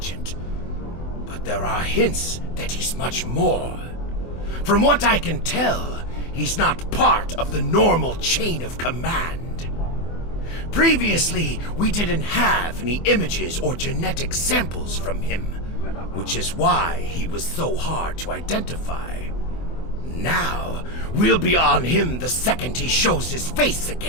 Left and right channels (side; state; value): right; late; 24 ms